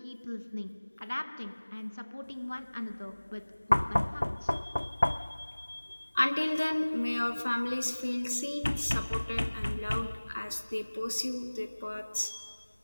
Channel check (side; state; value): both; inverted; correlation -1.00